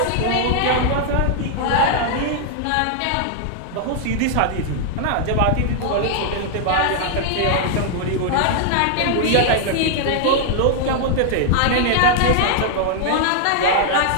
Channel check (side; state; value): both; different; correlation -0.01